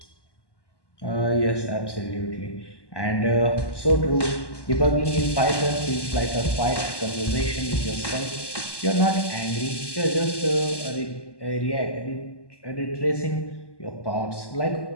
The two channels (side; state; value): right; late; 1.1 ms